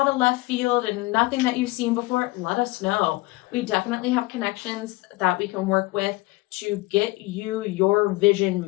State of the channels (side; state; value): right; quieter; 21.7 dB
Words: of left field and nothing that you've seen before, let us know. We definitely have connections that we can work with to get you your vision